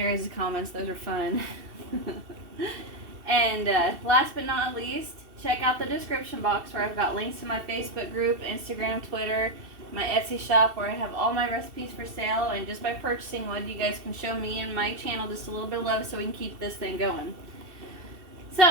guys' comments. Those are fun. And last but not least, check out the description box where I've got links to my Facebook group, Instagram, Twitter, my Etsy shop where I have all my recipes for sale. And just by purchasing one, you guys can show me and my channel just a little bit of love so we can keep this thing going.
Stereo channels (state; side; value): late; left; 2.7 ms